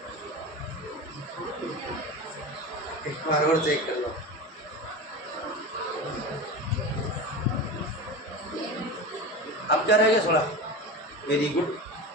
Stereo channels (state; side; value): normal; both; correlation 0.27